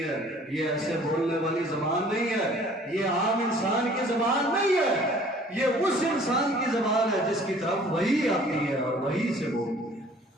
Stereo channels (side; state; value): both; normal; correlation 0.53